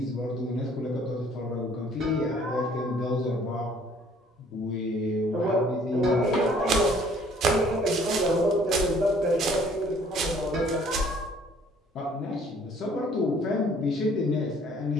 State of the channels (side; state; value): both; normal; correlation 0.58